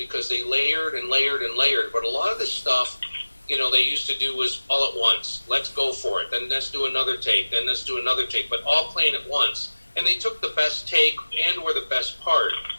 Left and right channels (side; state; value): both; inverted; correlation -1.00